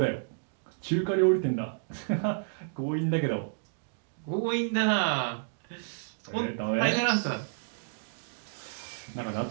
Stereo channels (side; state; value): left; silent; digital silence